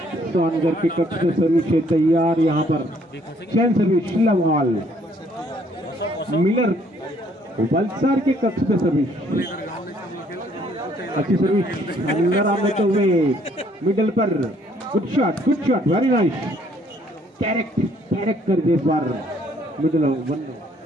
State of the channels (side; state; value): both; normal; correlation 0.64